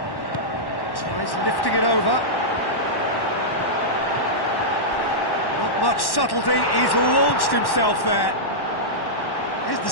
tries lifting it over. Not much subtlety, he's launched himself there. His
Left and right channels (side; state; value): right; late; 1.1 ms